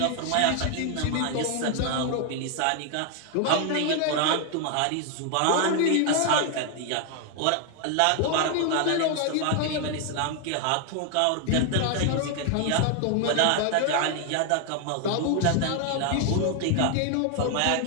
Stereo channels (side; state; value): both; different; correlation 0.00